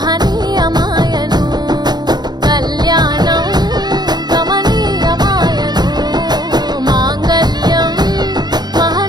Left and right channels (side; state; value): left; late; 0.20 ms